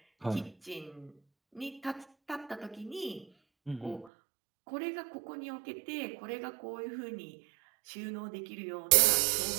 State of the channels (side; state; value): left; drops out; at 4.1 s